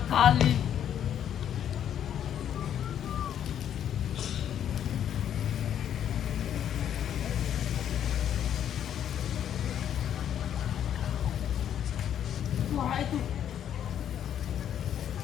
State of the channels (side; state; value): right; quieter; 9.8 dB